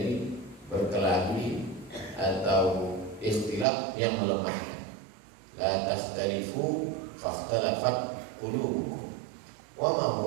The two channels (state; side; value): drops out; left; at 3.7 s